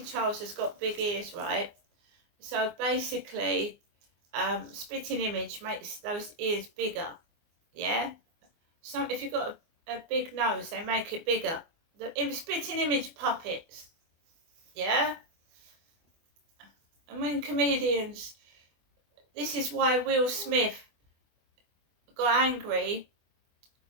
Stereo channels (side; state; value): left; late; 24 ms